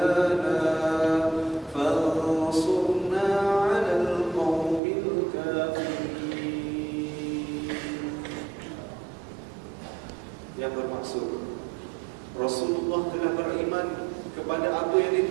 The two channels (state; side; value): drops out; left; at 4.8 s